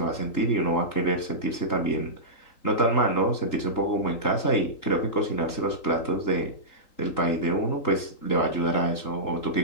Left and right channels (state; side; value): late; right; 3.8 ms